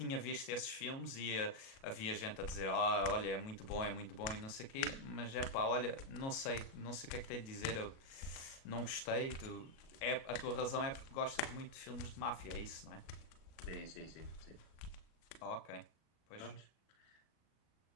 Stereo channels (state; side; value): late; right; 37 ms